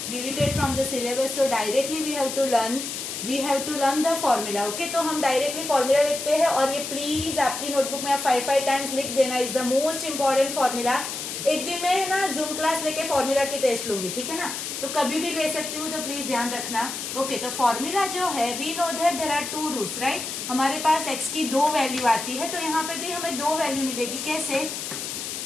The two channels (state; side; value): noise; left; hiss, 6 dB below the sound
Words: deleted from the syllabus, so directly we have to learn the formula. Okay, तो हम directly formula लिखते हैं, और ये please आपकी notebook में आप 5 times लिख देना. is the most important formula. एक दिन में ना जूम क्लास लेके फॉर्मूला की टेस्ट लूंगी, ठीक है ना, तो कभी भी ले सकती हूँ, तो प्लीज ध्यान रखना. ओके, तो फॉर्मूला जो है, we know that there are 2 roots, right. हमारे पास x की 2 वैल्यू आती है, तो यहाँ पे भी हमें 2 वैल्यू मिलेगी. कैसे?